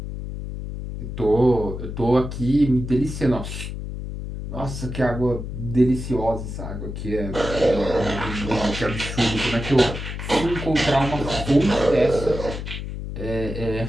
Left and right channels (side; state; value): left; noise; hum, 7 dB below the sound